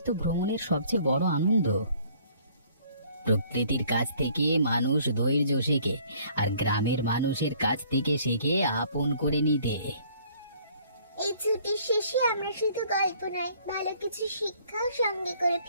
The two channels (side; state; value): both; inverted; correlation -0.59